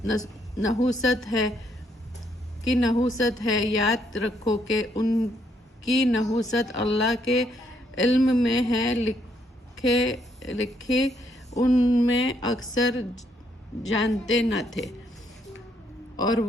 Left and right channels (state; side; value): normal; both; correlation 0.73